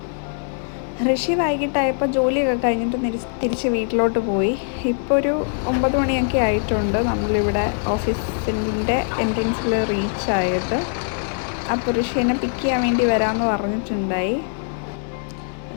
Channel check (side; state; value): right; silent; digital silence